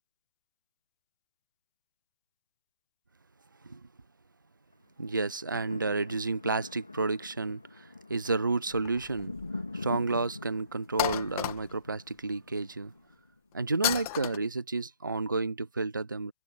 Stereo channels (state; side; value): inverted; both; correlation -0.66